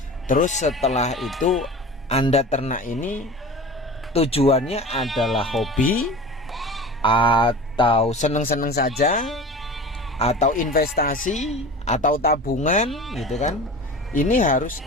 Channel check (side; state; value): both; normal; correlation 0.35